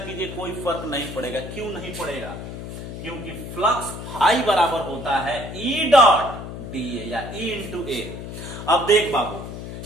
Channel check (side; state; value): left; noise; hum, 9 dB below the sound